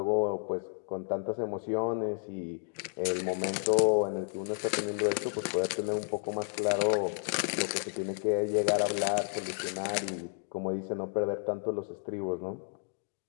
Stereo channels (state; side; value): silent; right; 57 dB below the other